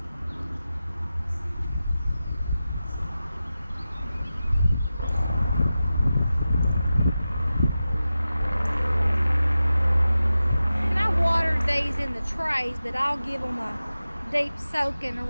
These in the trays, but I'll give them a deep soaking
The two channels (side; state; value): both; inverted; correlation -0.93